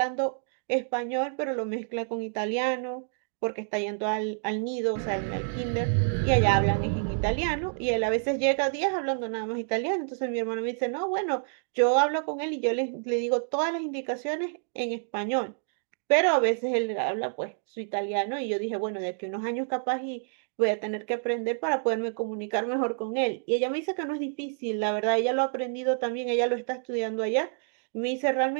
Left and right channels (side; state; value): left; silent; digital silence